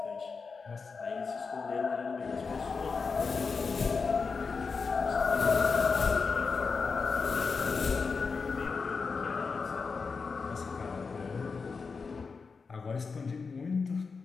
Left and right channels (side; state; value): right; quieter; 4.9 dB